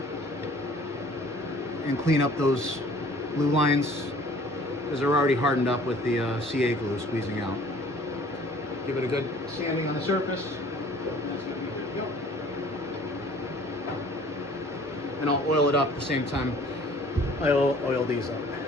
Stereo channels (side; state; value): both; normal; correlation 0.52